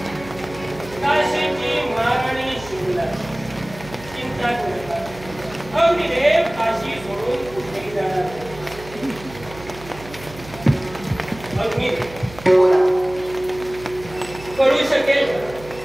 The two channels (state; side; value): noise; right; hum, 17 dB below the sound